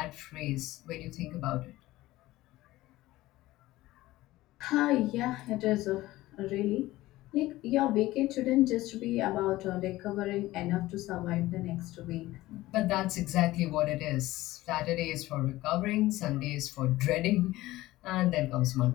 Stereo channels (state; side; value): quieter; right; 17.3 dB